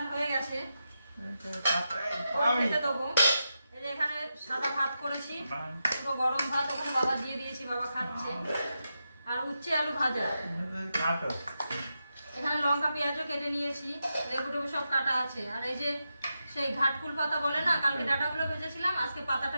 হয়ে গেছে, খেতে দেবো। এই যে এখানে সাদা ভাত করেছি, পুরো গরম ভাত, ওখানে বাবা দিয়ে দিয়েছি, বাবা খাচ্ছে। আর উচ্ছে আলু ভাজা, এখানে লঙ্কা পেঁয়াজও কেটে নিয়েছি, লেবু টেবু সব কাটা আছে। আর এই যে সেই ঘাটকুল পাতা বলে না, কালকে ডাটাগুলো ভেজেছিলাম, আজকে পাতাটা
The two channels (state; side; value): inverted; both; correlation -0.88